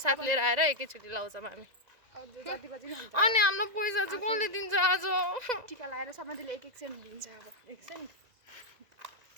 लिएर आएर एकैचोटि लाउँछौँ हामी। अनि हाम्रो पैसा चाहिँ कसले दिन्छ आज? टिका लगाएर सबैले एक सेन्ट दिन्छ। अब 1 सेन्ट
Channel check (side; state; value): left; late; 2.0 ms